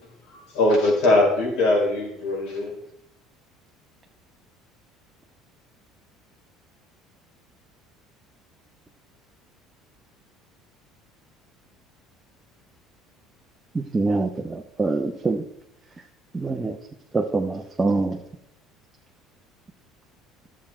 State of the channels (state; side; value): normal; both; correlation 0.67